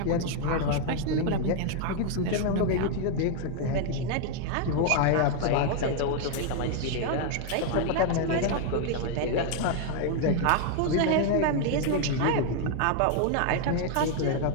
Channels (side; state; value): both; different; correlation 0.00